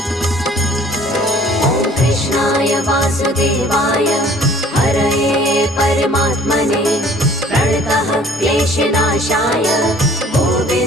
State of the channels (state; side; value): normal; both; correlation 0.53